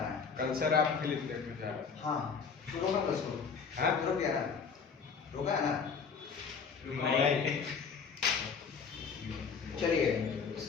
है कल सर आप फिल्म देखने जा रहे हैं हाँ तू रोका बस को हाँ? रुक गया ना रोका है ना नहीं चलिए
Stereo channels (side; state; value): right; quieter; 5.8 dB